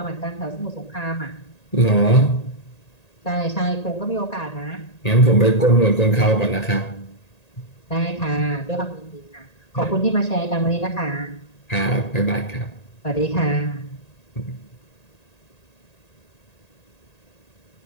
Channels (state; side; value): late; right; 1.8 ms